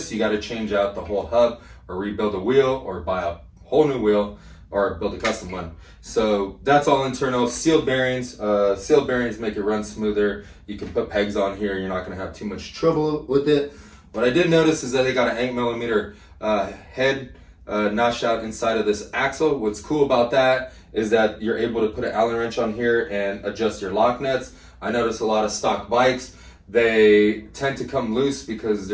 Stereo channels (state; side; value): identical; both; correlation 1.00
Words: you got to change out the whole hub or rebuild a wheel or buy a whole new wheel or build a custom one. So that's all internal. Sealed bearings. Sealed bearings make it run smoother. You can put pegs on here. You're not going to have too much trouble with it. What I did notice is that they got an 8 millimeter head notched out inside of this axle. What's cool about that is that you're able to put an Allen wrench on here and adjust your lock nuts. I notice a lot of stock bikes, they tend to come loose because